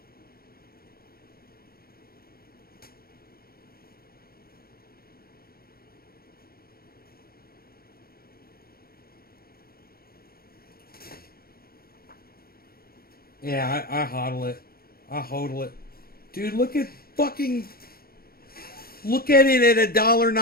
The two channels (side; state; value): right; late; 0.44 ms